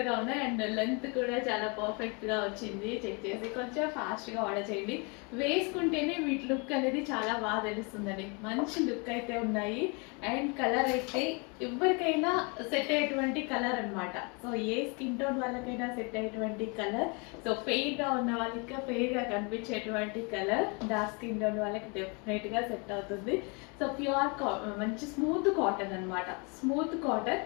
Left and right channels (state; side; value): quieter; right; 32.3 dB